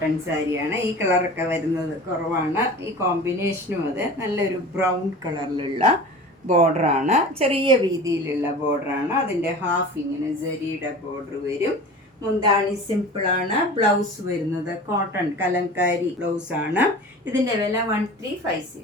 സാരിയാണ്. ഈ കളറൊക്കെ വരുന്നത് കുറവാണ്. ഈ കോമ്പിനേഷനും അത് നല്ലൊരു ബ്രൗൺ കളറിലുള്ള ബോർഡറാണ്, ചെറിയ വീതിയിലുള്ള ബോർഡറാണ്. അതിൻ്റെ ഹാഫ് ഇങ്ങനെ സെരിയുടെ ബോർഡർ വരും. മുന്താണി സിമ്പിളാണ്. ബ്ലൗസ് വരുന്നത് കോട്ടൺ കലങ്കാരി ബ്ലൗസാണ്. ഇതിൻ്റെ വില 1350.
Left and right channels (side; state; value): both; normal; correlation 0.37